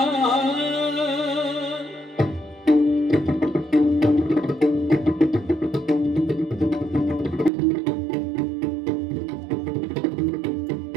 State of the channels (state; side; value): drops out; left; at 7.5 s